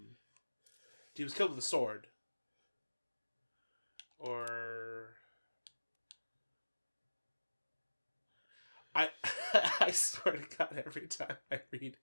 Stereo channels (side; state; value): both; inverted; correlation -1.00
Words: He was killed with a sword. Or... I swear to God, every time I read